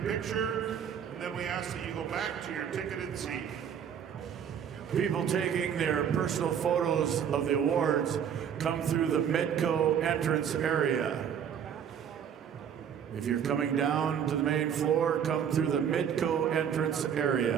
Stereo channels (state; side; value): quieter; left; 8.3 dB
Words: and then we ask that you go back to your ticketed seat. People taking their personal photos of the awards come through the Midco entrance area. If you're coming down to the main floor, come through the Midco entrance